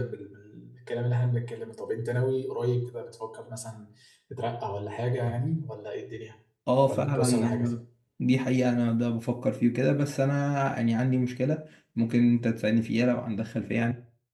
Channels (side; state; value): both; identical; correlation 1.00